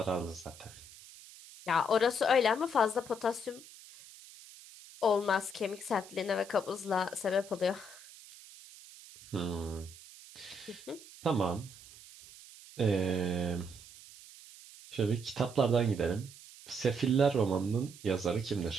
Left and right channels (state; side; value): noise; right; hiss, 19 dB below the sound